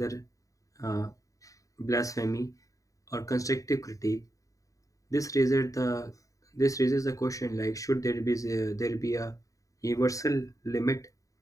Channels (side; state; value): right; late; 0.16 ms